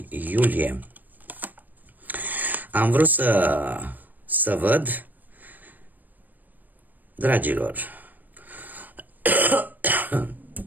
iulie. Am vrut să văd, dragilor,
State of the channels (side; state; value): left; late; 0.086 ms